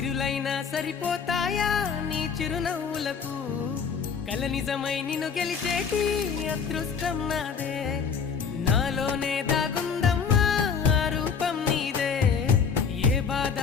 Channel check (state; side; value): quieter; right; 6.3 dB